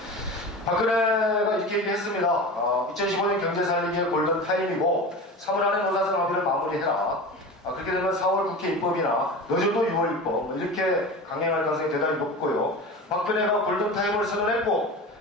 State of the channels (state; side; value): normal; both; correlation 0.31